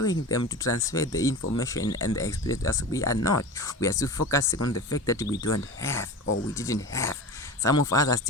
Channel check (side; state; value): both; normal; correlation 0.31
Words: them to transfer the information and the experience as we are not? We are still focusing on the fact that we don't have or we didn't have. Some of us are